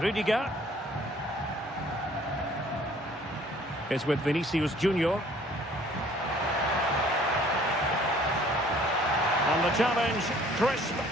Rudiger. Is with Vinicius Junior. And the challenge, crisp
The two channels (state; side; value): normal; both; correlation 0.56